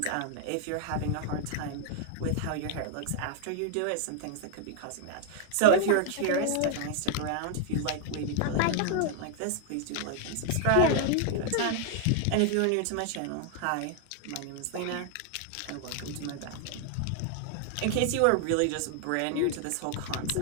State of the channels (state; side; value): different; both; correlation 0.00